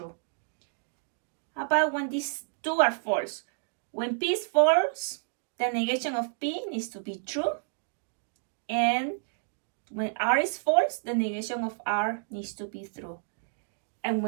How about when these two are false? When P is false, the negation of P needs to be true. And when R is false, the negation of R needs to be true. And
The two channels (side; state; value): left; silent; digital silence